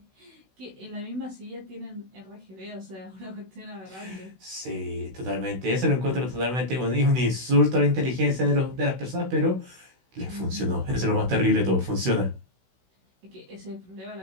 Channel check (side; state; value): left; late; 16 ms